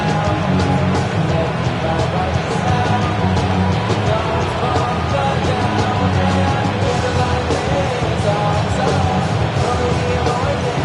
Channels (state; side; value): identical; both; correlation 1.00